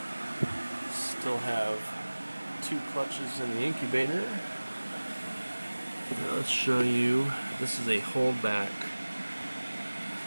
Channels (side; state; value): both; inverted; correlation -1.00